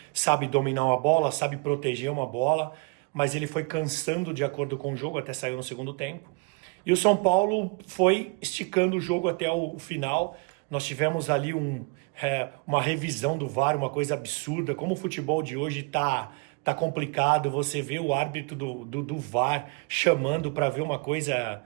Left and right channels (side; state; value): left; quieter; 30.8 dB